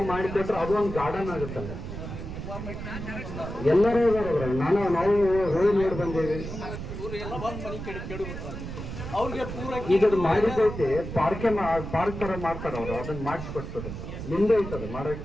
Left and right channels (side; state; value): right; noise; rumble, 8 dB below the sound